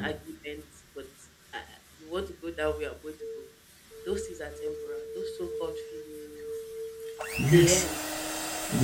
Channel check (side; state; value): both; identical; correlation 1.00